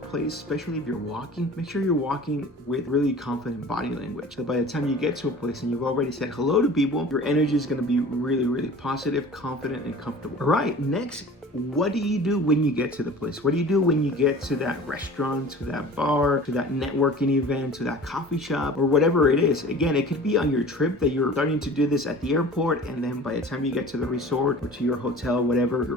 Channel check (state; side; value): normal; both; correlation 0.42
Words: especially if you're walking. Make sure you're walking with really confident body language. So by the time you get to a place and you've already said hello to people, your energy is going to be really, really positive, confident, and comfortable. All right, next, what do you do when you get to the place? What do you do when you get to that restaurant, to that bar, to that networking event, to that coffee shop, or whatever it is? Again, it could be on your trip that you're starting to do this at the airport, and then by the time you get to the resort or to your hotel, whatever,